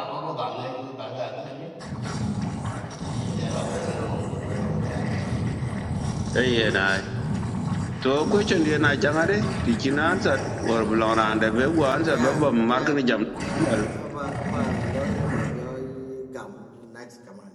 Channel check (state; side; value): identical; both; correlation 1.00